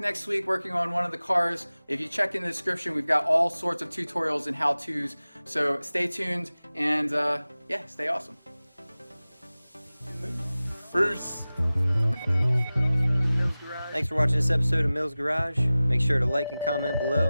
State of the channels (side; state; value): both; inverted; correlation -0.97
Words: next week working on one of the cars. If you check in the description, we've got all sorts of tutorials and how-tos. So stay tuned and yeah, stay awesome. Bruce. Thanks for watching this episode of Mills Garage. Make sure to like and comment below